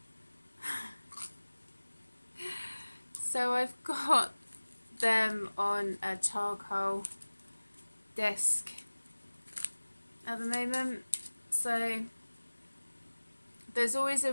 So I've got them on a charcoal disc at the moment. So there's always a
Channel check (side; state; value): both; inverted; correlation -1.00